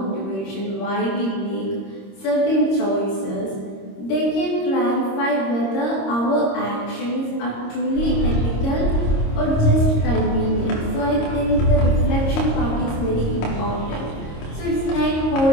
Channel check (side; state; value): right; late; 26 ms